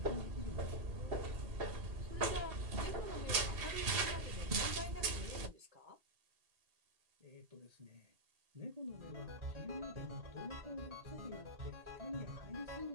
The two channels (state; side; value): late; left; 2.7 ms